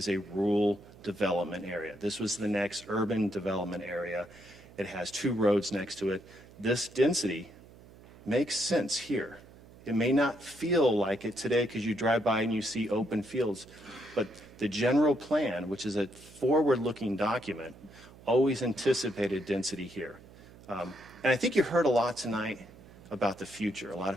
a rural development area. This was the next urban development area. It has 2 roads next to it. This density makes sense here. It may not feel like it today because you drive by and you see open fields, but the general plan, which is a forward-looking document, always anticipated density here. And I think you heard a lot tonight about the future. A lot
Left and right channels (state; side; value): noise; right; hum, 21 dB below the sound